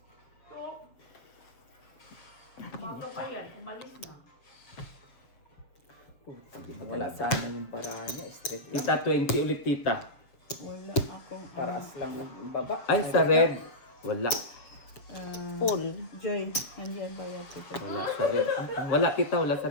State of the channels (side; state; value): right; late; 7.2 ms